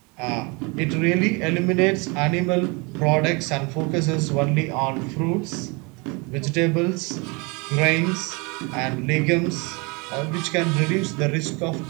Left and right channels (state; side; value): quieter; left; 28.9 dB